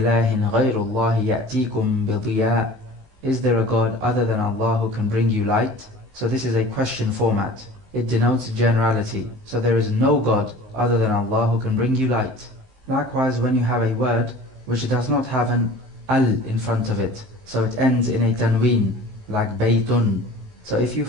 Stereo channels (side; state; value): left; late; 19 ms